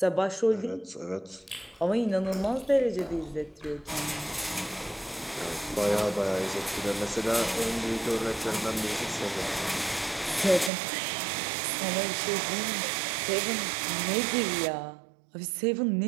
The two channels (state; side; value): drops out; left; at 10.7 s